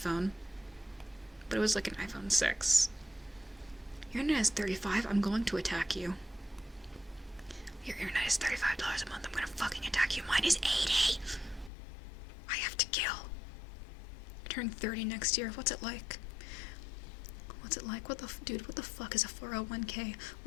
But it was like an iPhone 6. Your internet is $35. I'm going to attack you. Your internet is $35 a month. I'm gonna fucking attack you. Mine is $80. I have to kill. I turn 30 next year. What's it like? Dude, what the fuck is a 401k?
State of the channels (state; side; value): drops out; right; at 11.7 s